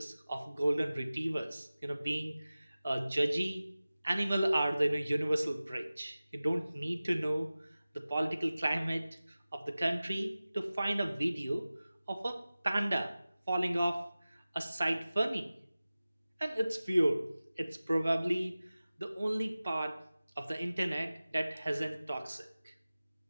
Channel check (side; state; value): both; inverted; correlation -0.97